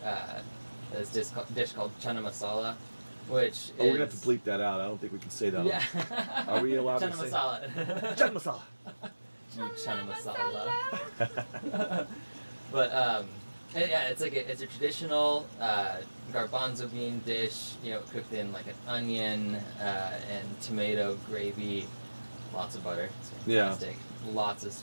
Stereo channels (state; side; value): inverted; both; correlation -1.00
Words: this dish called chana masala, which we're gonna have to bleep that out. I don't think we can say that. Yeah. Are we allowed chana to say masala? Chana masala. Chana masala. But it's a traditional garbanzo bean dish, you know, cooked in like an onion and tomato gravy, lots of butter. It's fantastic. Lots of